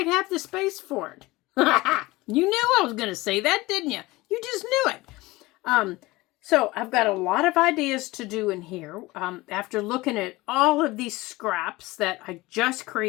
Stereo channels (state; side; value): quieter; right; 20.6 dB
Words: have the space for it. You knew I was going to say that, didn't you? You just knew it. So I've got a lot of ideas to do in here. After looking at all of these scraps that I just